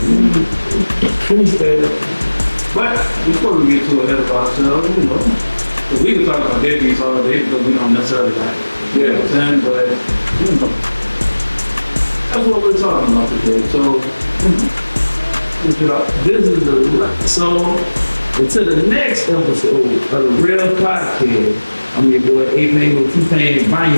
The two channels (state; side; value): inverted; both; correlation -1.00